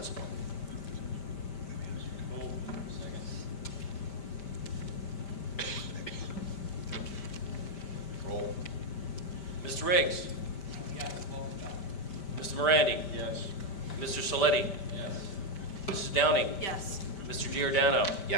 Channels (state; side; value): late; right; 5.1 ms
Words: Roll. Mr. Riggs? Yes, welcome back. Mr. Morandi? Yes. Mr. Saletti? Yes. Mrs. Downing? Yes. Mr. Giordano?